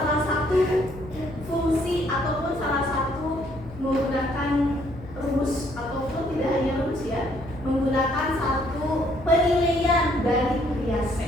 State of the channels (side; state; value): left; noise; hum, 16 dB below the sound